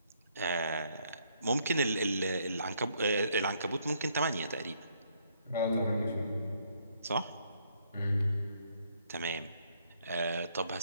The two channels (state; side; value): inverted; both; correlation -0.70